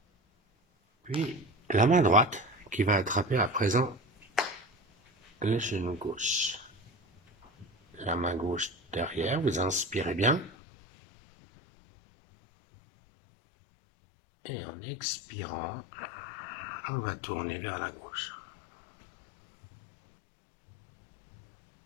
Puis la main droite qui va attraper à présent le genou gauche. La main gauche derrière, vous inspirez bien. Et en expirant, on va tourner vers la gauche.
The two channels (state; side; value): drops out; right; at 10.5 s